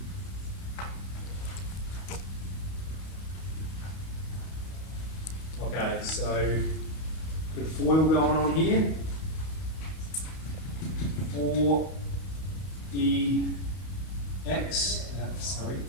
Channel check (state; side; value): late; right; 32 ms